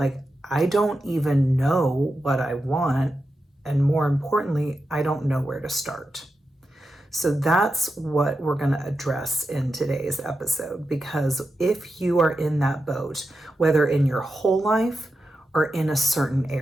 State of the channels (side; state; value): both; normal; correlation 0.89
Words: I don't even know what I want. And more importantly, I don't know where to start. So that's what we're going to address in today's episode, because if you are in that boat, whether in your whole life or in a certain